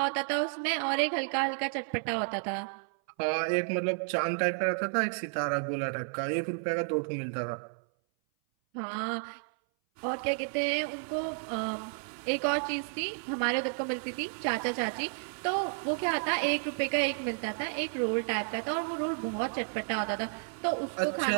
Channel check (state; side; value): silent; left; 57 dB below the other